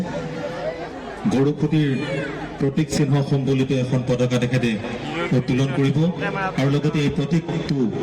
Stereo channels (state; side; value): identical; both; correlation 1.00